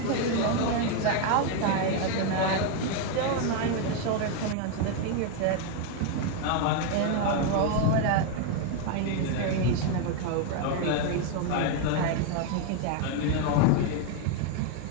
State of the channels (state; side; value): different; both; correlation 0.01